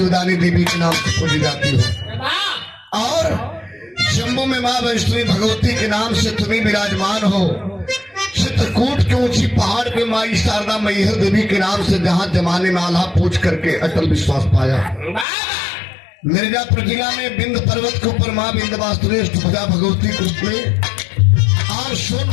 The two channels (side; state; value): right; drops out; at 15.2 s